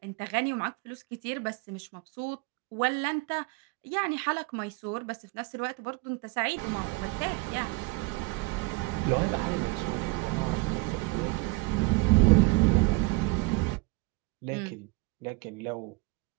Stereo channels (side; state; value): left; quieter; 25.4 dB